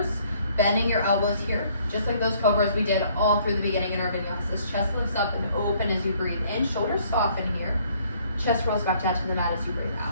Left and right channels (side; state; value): both; inverted; correlation -0.62